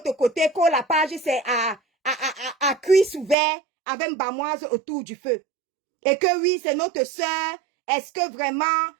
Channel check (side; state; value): left; drops out; at 3.4 s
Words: côté, que la page c'est à cuisse ouvert avec une bamoise autour du feu. Et que oui, c'est notre sœur. Est-ce que vraiment